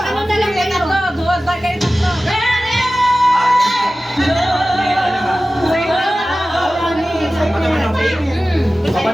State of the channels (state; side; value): normal; both; correlation 0.96